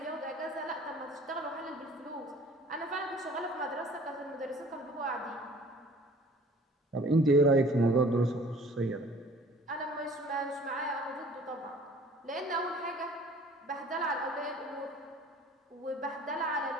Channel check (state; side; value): normal; both; correlation 0.50